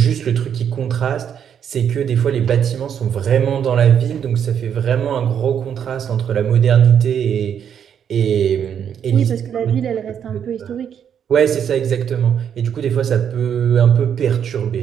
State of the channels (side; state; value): left; quieter; 8.4 dB